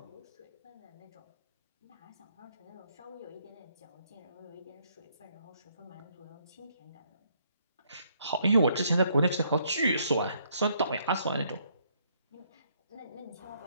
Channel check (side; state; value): both; inverted; correlation -0.70